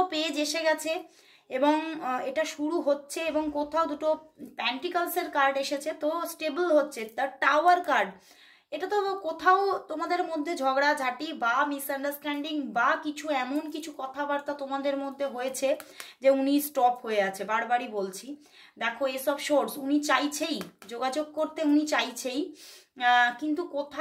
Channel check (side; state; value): both; identical; correlation 1.00